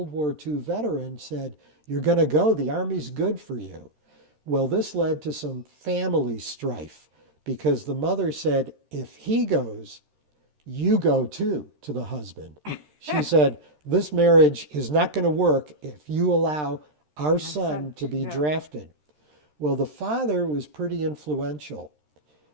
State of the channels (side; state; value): left; late; 13 ms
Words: War II veteran, said, "You're going to go. The Army's good for you." Well, this led to some family strife because the mother said, "If he goes, you go too," to the husband. She said, "This marriage is not going to work if you allow our son to be drafted." Well, the father was pretty influential.